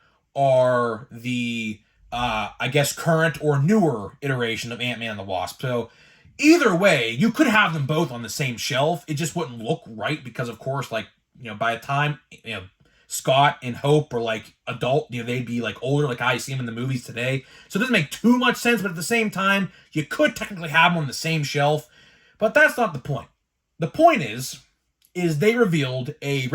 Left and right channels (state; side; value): identical; both; correlation 1.00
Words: are the, I guess, current or newer iteration of Ant-Man and the Wasp. So, either way, you could have them both on the same shelf. It just wouldn't look right because, of course, by the time, Scott and Hope are adult, they'd be older, like I see them in the movies today. So it doesn't make too much sense, but at the same time, you could technically have them on the same shelf. But that's not the point. The point is they revealed a